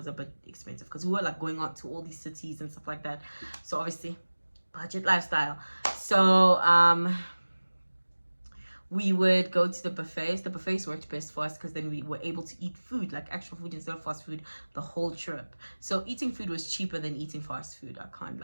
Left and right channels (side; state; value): both; inverted; correlation -1.00